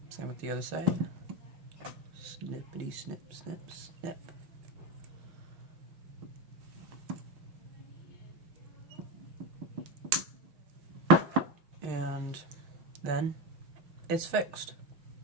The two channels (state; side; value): late; left; 6.4 ms